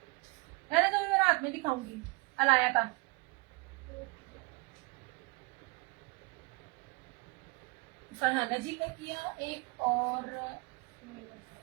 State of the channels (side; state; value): left; quieter; 27.2 dB